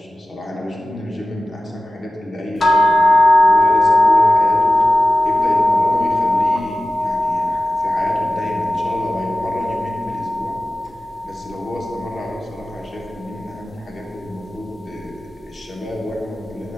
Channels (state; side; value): normal; both; correlation 0.96